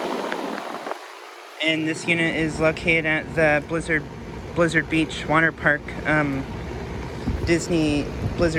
And this unit is located at the Blizzard Beach water park, Disney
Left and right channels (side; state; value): both; identical; correlation 1.00